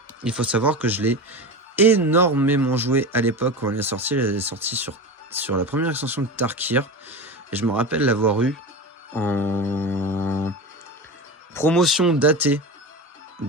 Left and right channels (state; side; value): normal; both; correlation 0.25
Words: il faut savoir que je l'ai énormément jouée à l'époque quand elle est sortie. Elle est sortie sur la première extension de Tarkir. Et je me rappelle l'avoir eu en promotion datée